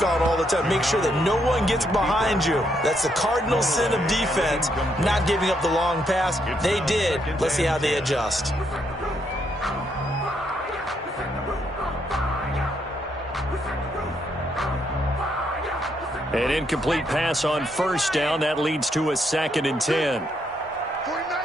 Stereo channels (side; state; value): both; normal; correlation 0.76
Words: on all the time. Make sure that no one gets behind you. That's the cardinal sin of defense, not giving up the long pass. They did. Let's see how they adjust. An incomplete pass on 1st down. That leads to a 2nd and 10.